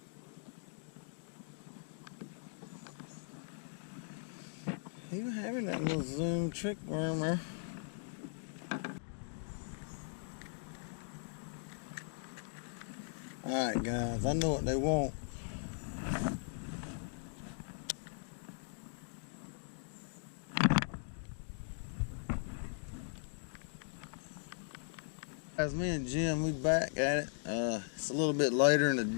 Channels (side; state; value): right; silent; digital silence